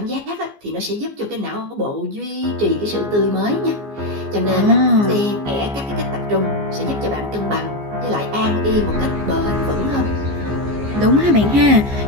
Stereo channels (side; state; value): left; late; 14 ms